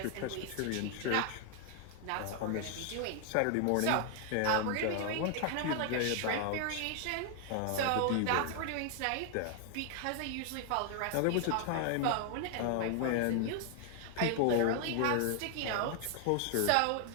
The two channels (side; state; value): both; different; correlation 0.00